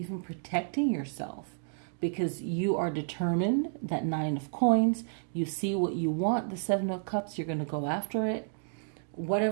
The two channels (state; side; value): silent; left; digital silence